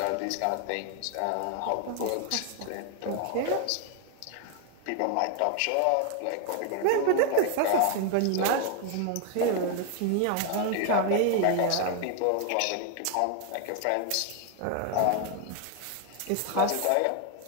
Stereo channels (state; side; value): different; both; correlation 0.00